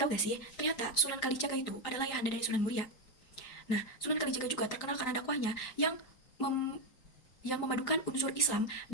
gak sih, ternyata Sunan Kalijaga itu adalah ayahanda dari Sunan Muria. Nah, Sunan Kalijaga juga terkenal karena dakwahnya yang memadukan unsur Islam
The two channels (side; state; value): right; late; 3.9 ms